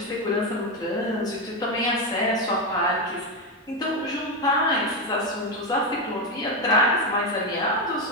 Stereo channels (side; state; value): both; normal; correlation 0.10